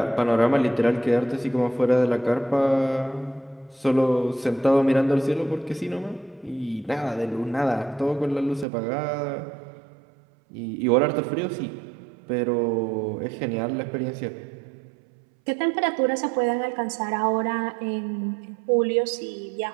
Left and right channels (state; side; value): drops out; left; at 8.7 s